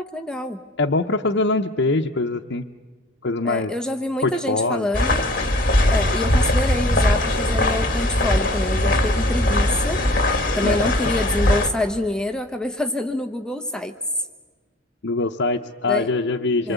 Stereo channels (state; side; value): normal; both; correlation 0.46